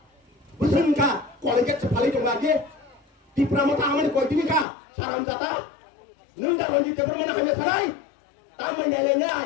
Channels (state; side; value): drops out; right; at 4.7 s